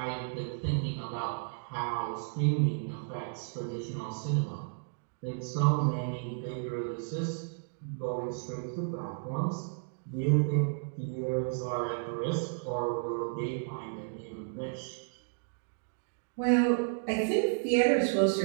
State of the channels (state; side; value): silent; left; digital silence